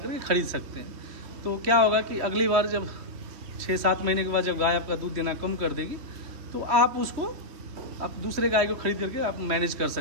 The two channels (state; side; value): late; left; 3.1 ms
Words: खरीद सकते हैं। तो क्या होगा कि अगली बार जब 6-7 महीने के बाद जब गाय आपका दूध देना कम कर देगी, तो आप उसको, आप दूसरे गाय को खरीद करके आप मैनेज कर